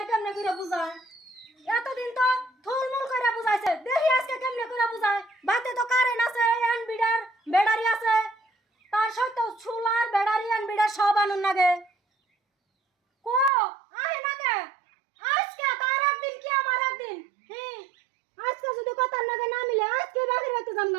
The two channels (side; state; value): left; drops out; at 13.5 s